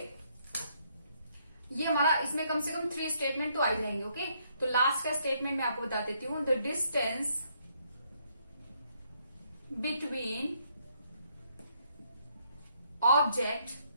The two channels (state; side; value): inverted; both; correlation -0.72